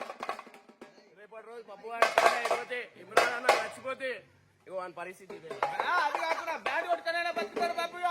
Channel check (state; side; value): identical; both; correlation 1.00